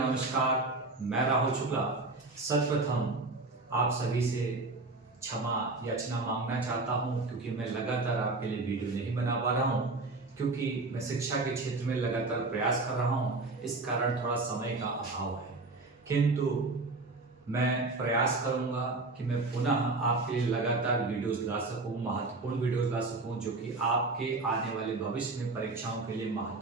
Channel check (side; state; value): left; quieter; 3.4 dB